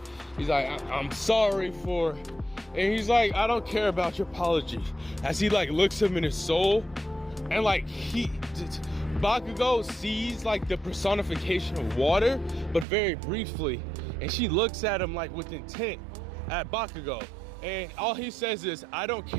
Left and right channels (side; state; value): left; drops out; at 12.9 s